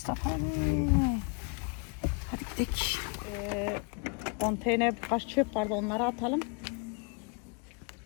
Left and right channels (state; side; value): quieter; right; 34.9 dB